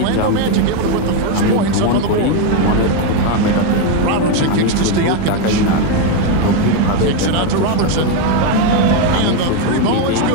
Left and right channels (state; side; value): different; both; correlation 0.02